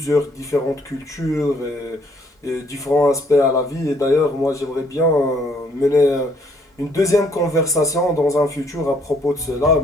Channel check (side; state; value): both; normal; correlation 0.66